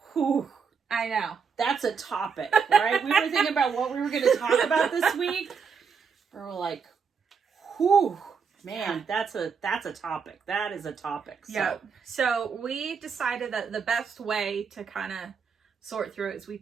Whew. I know. That's a topic, right? We were thinking about what we were going to talk about this week. We were like, whew, man, that's a topic. That is a topic. So. Yeah. So we decided that the best way to kind of sort through it is we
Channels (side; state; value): left; quieter; 6.0 dB